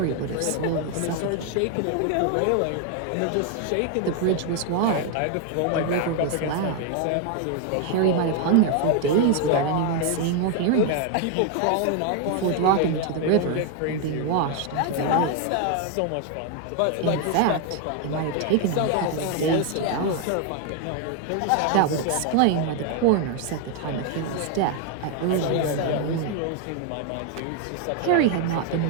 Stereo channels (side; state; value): both; different; correlation 0.01